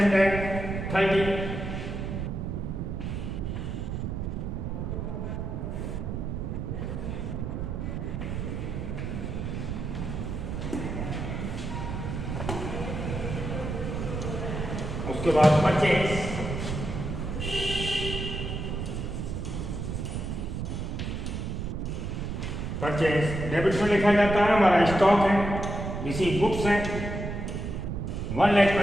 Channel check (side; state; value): right; noise; rumble, 4 dB below the sound